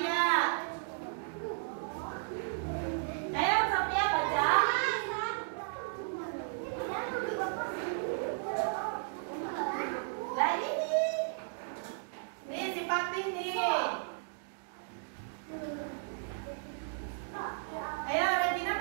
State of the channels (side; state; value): left; silent; digital silence